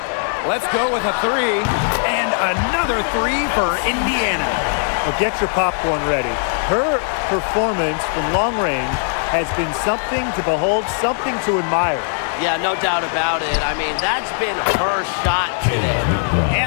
Let's go with a 3. And another 3 for Indiana. Well, get your popcorn ready. Her performance from long range has been something to behold, something to admire. Yeah, no doubt about it. I mean, that's been her shot today.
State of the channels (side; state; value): right; silent; digital silence